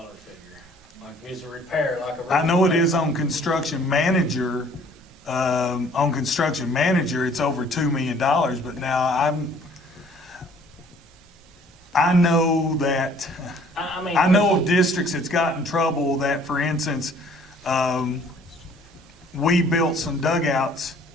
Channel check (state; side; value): normal; both; correlation 0.56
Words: figure. Like if it's a repair, like a roof. I know it repair. is on construction manager. On construction manager, it's over $2 million, but now I know that, I mean. I know of districts that's got in trouble that, for instance, we built some dugouts